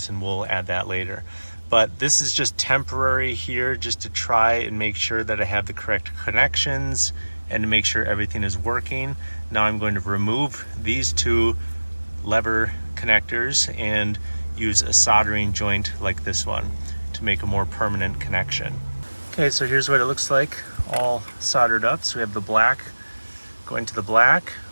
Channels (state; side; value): inverted; both; correlation -1.00